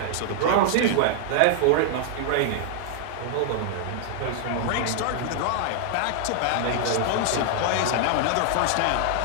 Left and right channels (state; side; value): different; both; correlation -0.01